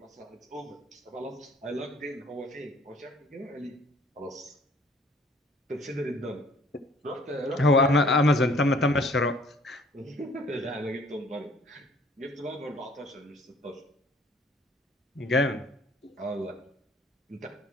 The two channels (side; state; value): both; normal; correlation 0.56